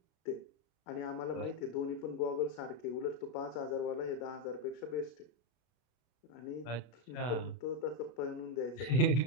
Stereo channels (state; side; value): late; right; 33 ms